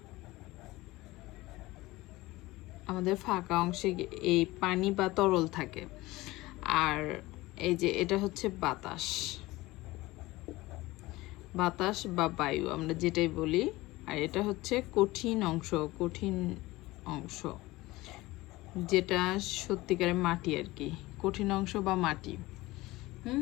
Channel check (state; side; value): quieter; right; 19.6 dB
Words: আমাদের ফাঁকা অংশে এই পানি বা তরল থাকে। আর এই যে এটা হচ্ছে বাতাস, বাতাস বা বায়ু আমরা যেটাই বলি। আর এটা হচ্ছে কঠিন অংশ, কঠিন অংশ যেটা সত্যিকারের মাটি আর কি, কঠিন অংশ বা মাটি।